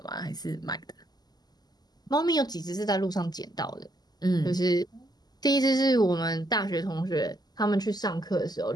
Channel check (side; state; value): right; late; 0.20 ms